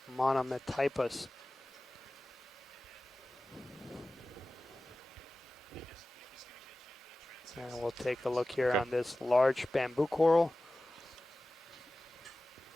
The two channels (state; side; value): normal; both; correlation 0.96